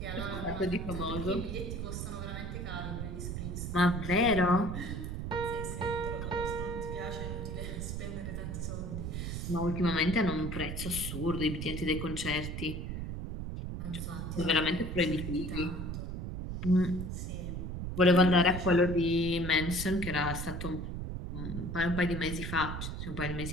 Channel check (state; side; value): noise; right; rumble, 5 dB below the sound